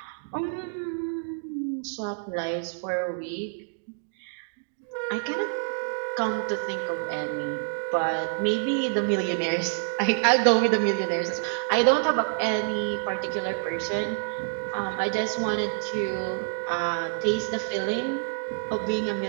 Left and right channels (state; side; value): silent; left; digital silence